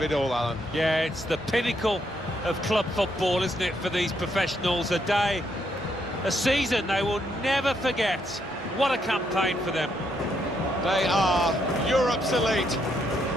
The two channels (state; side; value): normal; both; correlation 0.75